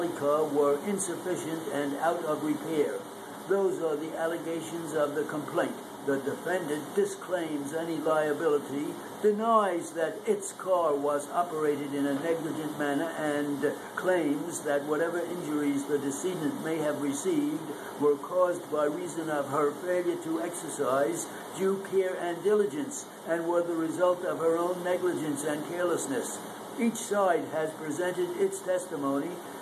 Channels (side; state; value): both; identical; correlation 1.00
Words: car were insufficient and out of repair. Those are the allegations of the complaint. The defendant disclaims any liability, denies that its car was operated in a negligent manner, and claims that whatever injuries the decedent may have received were caused by reason of her failure to exercise due care and diligence, and were the result of her own negligence and carelessness. Each side has presented its testimony,